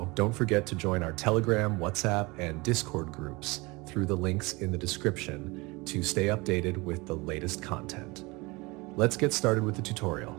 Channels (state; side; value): quieter; left; 24.6 dB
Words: don't forget to join our Telegram, WhatsApp, and Discord groups through the links in the description to stay updated with the latest content. Let's get started with the tutorial.